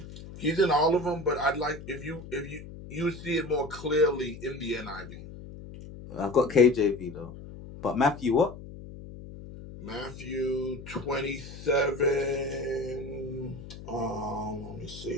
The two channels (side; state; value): left; noise; hum, 14 dB below the sound